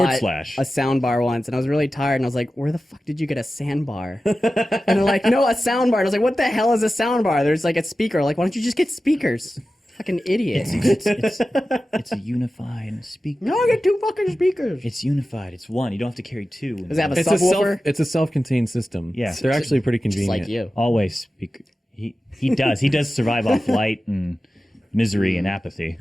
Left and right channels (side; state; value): both; normal; correlation 0.94